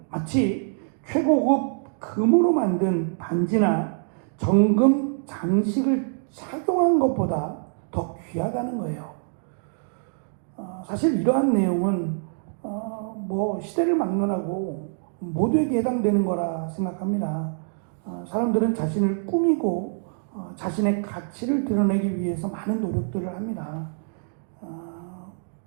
마치 최고급 금으로 만든 반지나 정금 장식을 착용한 것보다 더 귀하다는 거예요. 사실 이러한 내용은 시대를 막론하고 모두에게 해당되는 거라 생각합니다. 사람들은 자신을 꾸미고 자신의 가치를 드러내기 위해서 많은 노력들을 합니다.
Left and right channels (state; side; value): silent; left; digital silence